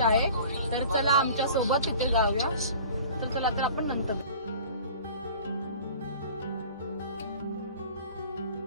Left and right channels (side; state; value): both; inverted; correlation -0.44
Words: तर चला आमच्या सोबत तिथे जाऊया. तर चला तर आपण नंतर